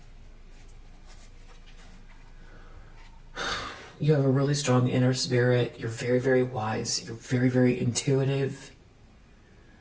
You have a really strong inner spirit. You're very, very wise. You're very, very intuitive.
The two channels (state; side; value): identical; both; correlation 1.00